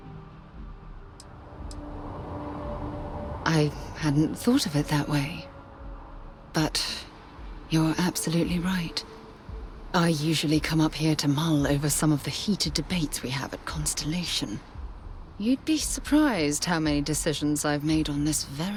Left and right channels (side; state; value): both; identical; correlation 1.00